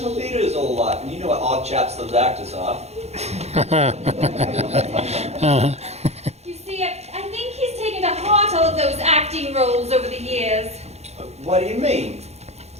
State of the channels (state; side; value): late; left; 0.31 ms